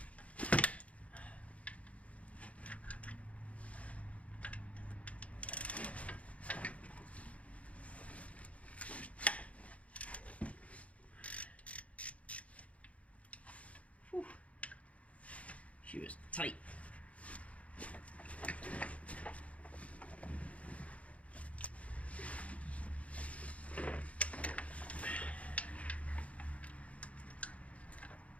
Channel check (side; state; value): right; late; 0.065 ms